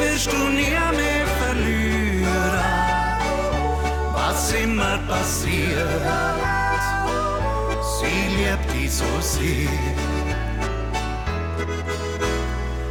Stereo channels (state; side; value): identical; both; correlation 1.00